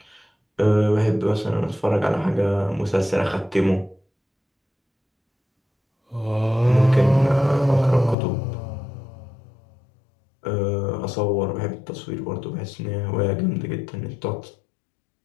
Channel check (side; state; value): right; drops out; at 8.2 s